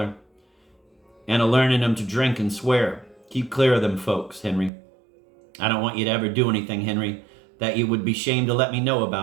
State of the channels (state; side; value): drops out; left; at 4.7 s